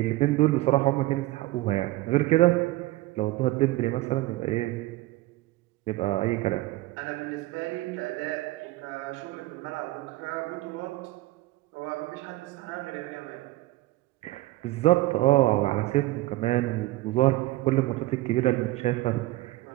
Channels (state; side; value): quieter; left; 18.2 dB